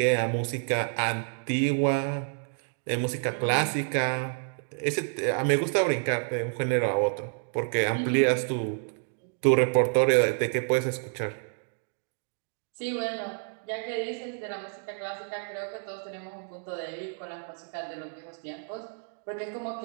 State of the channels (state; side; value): silent; left; 59 dB below the other